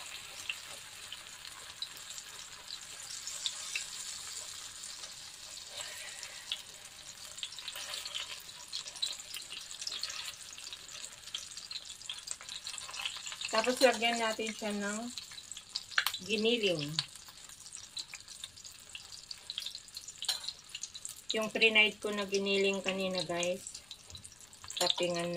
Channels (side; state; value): left; noise; rumble, 25 dB below the sound